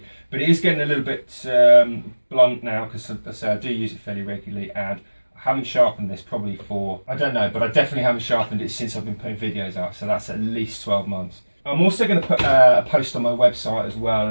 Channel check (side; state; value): both; inverted; correlation -1.00